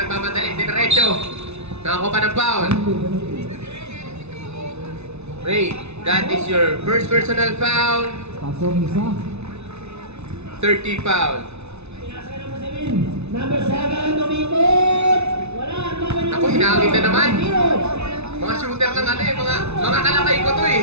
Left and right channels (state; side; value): late; left; 0.81 ms